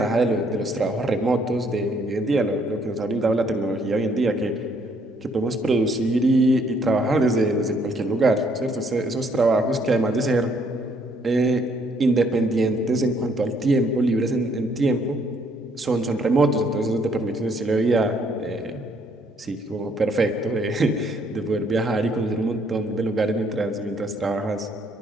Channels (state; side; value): normal; both; correlation 0.67